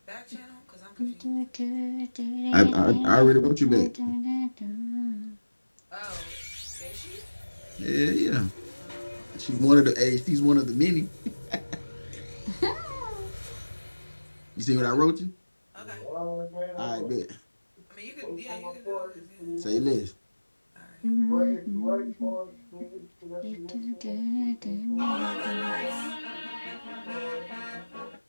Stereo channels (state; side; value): inverted; both; correlation -1.00